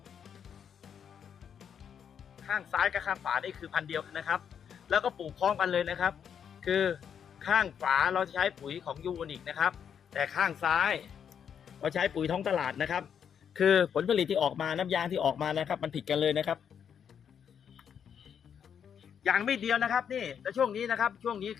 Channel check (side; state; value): right; quieter; 7.9 dB